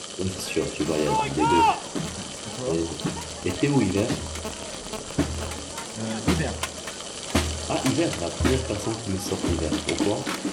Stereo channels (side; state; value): both; identical; correlation 1.00